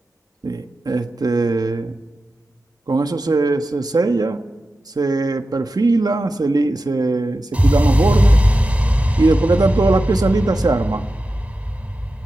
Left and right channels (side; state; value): both; normal; correlation 0.92